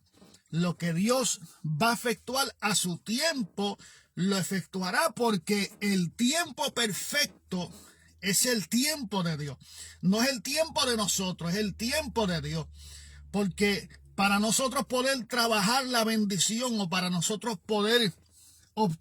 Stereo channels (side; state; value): both; identical; correlation 1.00